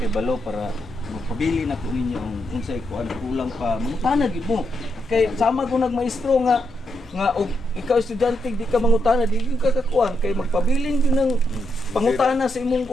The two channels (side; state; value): both; normal; correlation 0.82